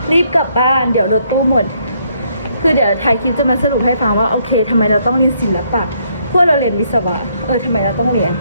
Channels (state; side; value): inverted; both; correlation -0.71